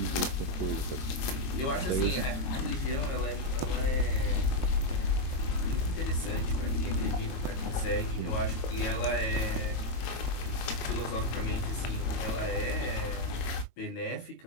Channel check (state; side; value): late; right; 22 ms